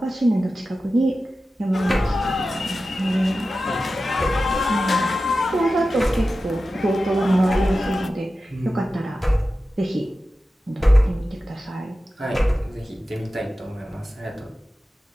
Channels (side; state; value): both; normal; correlation 0.93